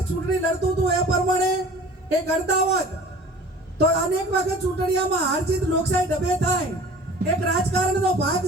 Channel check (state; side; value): normal; both; correlation 0.44